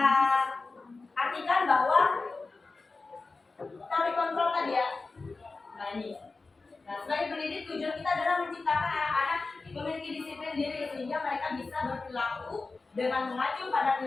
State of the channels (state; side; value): quieter; right; 3.8 dB